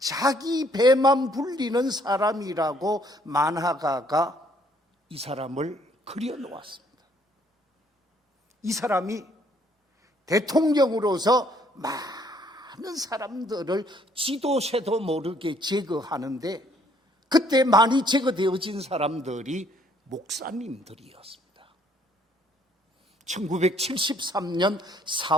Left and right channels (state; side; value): normal; both; correlation 0.64